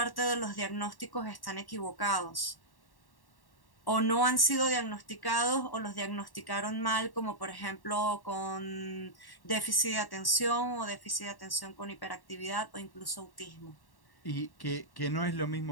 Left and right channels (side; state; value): right; late; 1.1 ms